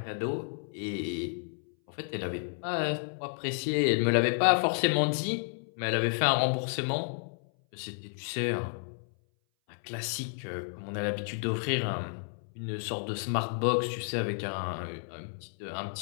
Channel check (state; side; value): silent; right; 57 dB below the other